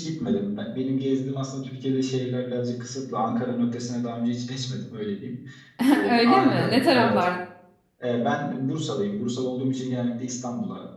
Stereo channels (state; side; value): identical; both; correlation 1.00